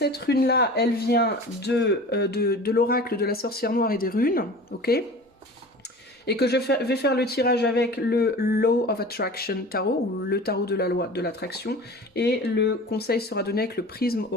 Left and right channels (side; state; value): both; normal; correlation 0.38